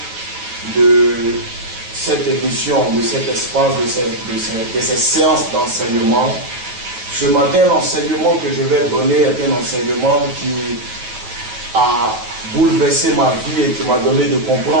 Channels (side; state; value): left; late; 9.1 ms